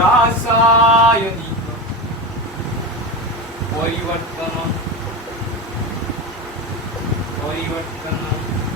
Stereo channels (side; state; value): both; normal; correlation 0.20